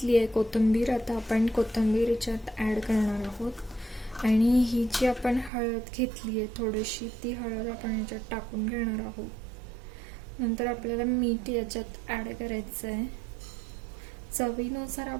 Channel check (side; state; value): left; drops out; at 5.5 s